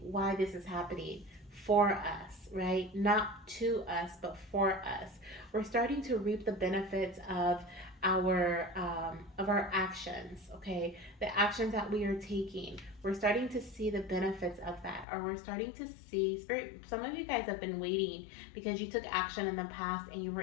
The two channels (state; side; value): drops out; right; at 15.1 s